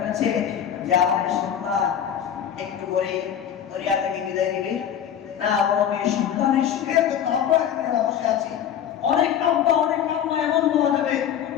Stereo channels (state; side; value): quieter; right; 9.3 dB